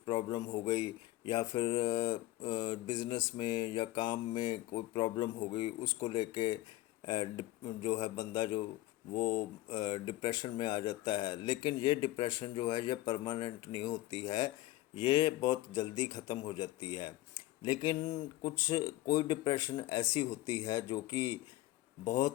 हो गई, या फिर बिज़नेस में या काम में कोई प्रॉब्लम हो गई, उसको लेके जो है बंदा जो वो डिप्रेशन में आ जाता है। लेकिन ये डिप्रेशन जो है ये परमानेंट नहीं होती है, ये बहुत जल्दी ख़त्म हो जाती है। लेकिन कोई डिप्रेशन ऐसी होती है जो कि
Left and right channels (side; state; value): right; quieter; 17.0 dB